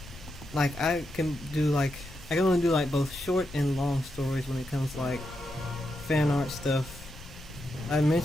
like I can only do like both short and long stories when it comes to like fan art stuff. I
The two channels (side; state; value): left; noise; rumble, 16 dB below the sound